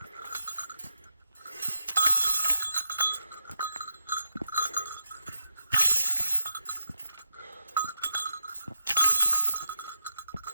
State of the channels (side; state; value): both; inverted; correlation -0.86